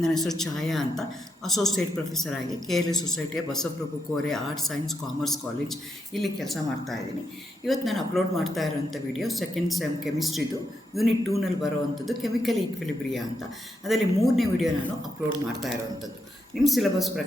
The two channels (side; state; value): both; normal; correlation 0.82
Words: ಹೆಸರು ಛಾಯಾ ಅಂತ. ಅಸೋಸಿಯೇಟ್ ಪ್ರೊಫೆಸರ್ ಆಗಿ KLE ಸೊಸೈಟಿಯ Basavaprabhu Kore arts science commerce college ಇಲ್ಲಿ ಕೆಲಸ ಮಾಡ್ತಾ ಇದ್ದೀನಿ. ಇವತ್ತು ನಾನು ಅಪ್ಲೋಡ್ ಮಾಡ್ತಾ ಇರೋಂಥ ವಿಡಿಯೋ ಸೆಕೆಂಡ್ ಸೆಮ್ ಕೆಮಿಸ್ಟ್ರಿದು ಯೂನಿಟ್ 2ನಲ್ಲಿ ಬರೋವಂಥದ್ದು ಕೆಮಿಕಲ್ ಈಕ್ವಿಲಿಬ್ರಿಯಾ ಅಂತ. ಅದರಲ್ಲಿ 3ನೇ ವಿಡಿಯೋ ನಾನು ಅಪ್ಲೋಡ್ ಮಾಡ್ತಾ ಇರೋವಂಥದ್ದು. ನಿಮ್ಮ ಸಿಲೆಬಸ್